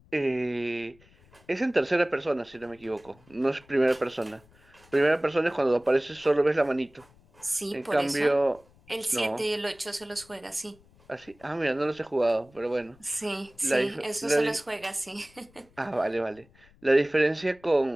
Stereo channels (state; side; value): noise; left; rumble, 29 dB below the sound